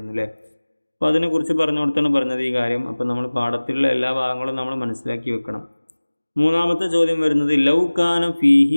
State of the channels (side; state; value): both; inverted; correlation -1.00